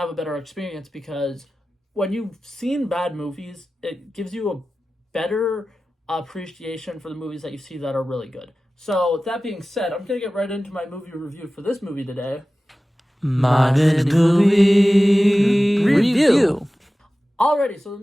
a better experience, because when you've seen bad movies, it gives you a better appreciation for the movies that you see that are really good. So with that being said, I'm going to get right into my movie review for this movie today. My Movie Review. Alrighty, so the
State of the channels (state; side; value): normal; both; correlation 0.96